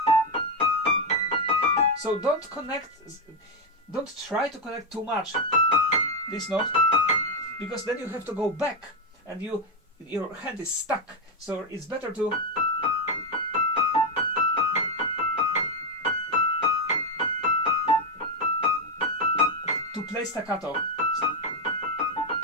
So don't try to connect too much this note, because then you have to go back and your hand is stuck. So it's better to play staccato.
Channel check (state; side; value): normal; both; correlation 0.05